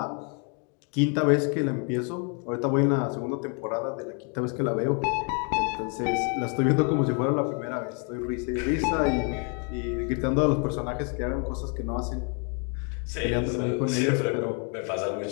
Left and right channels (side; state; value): right; quieter; 38.4 dB